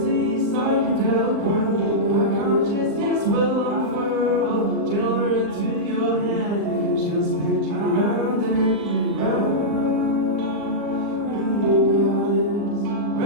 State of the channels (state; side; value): late; left; 39 ms